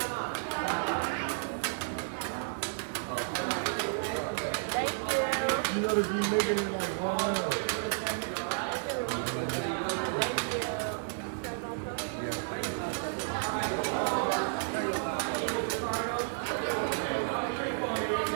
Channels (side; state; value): left; silent; digital silence